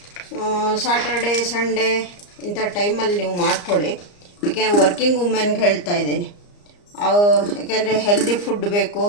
ಸಾಟರ್ಡೆ ಸಂಡೇ ಇಂಥ ಟೈಮಲ್ಲಿ ನೀವು ಮಾಡ್ಕೊಳ್ಳಿ. ಯಾಕೆಂದರೆ ವರ್ಕಿಂಗ್ ವುಮೆನ್ಗೆ ಹೇಳ್ತಾ ಇದ್ದೀನಿ. ಯಾಕೆಂದರೆ ಹೆಲ್ದಿ ಫುಡ್ ಬೇಕು.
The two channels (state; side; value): late; right; 34 ms